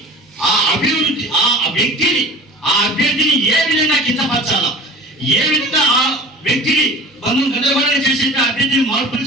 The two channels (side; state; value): both; normal; correlation 0.38